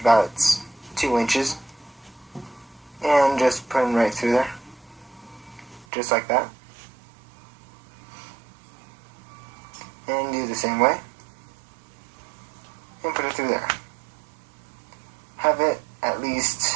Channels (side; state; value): left; drops out; at 5.9 s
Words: about 2 inches. And just put them right through there. Just like that. And do the same way. And put it through there. Have it at